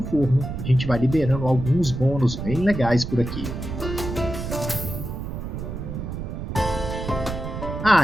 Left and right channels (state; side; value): noise; right; rumble, 6 dB below the sound